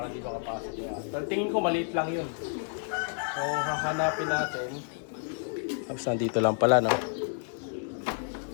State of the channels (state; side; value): silent; right; 58 dB below the other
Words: di makapasok yung ahas. Pero tingin ko maliit lang yun. So hahanapin natin. Tapos nandito lang pala, no?